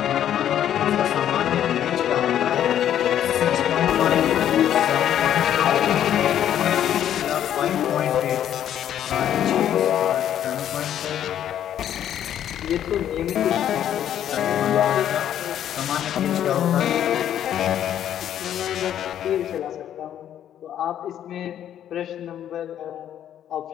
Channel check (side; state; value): right; quieter; 10.5 dB